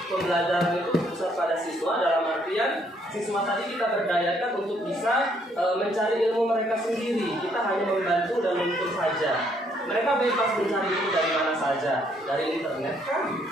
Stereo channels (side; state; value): both; normal; correlation 0.69